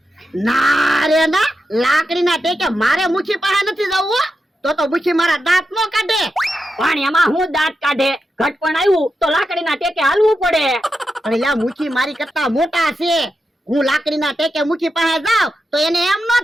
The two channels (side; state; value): both; normal; correlation 0.88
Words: ના રે ના, લાકડીના ટેકે મારે મુખી પાસે નથી જવું. તો મુખી મારા દાંત નો કાઢે. પણ એમાં હું દાંત કાઢે? ઘટપણ આવ્યું તો લાકડીના ટેકે હાલવું પડે. અને લા મુખી મારી કરતા મોટા છે. હું લાકડીના ટેકે મુખી પાસે જાવ તો એને એમ ન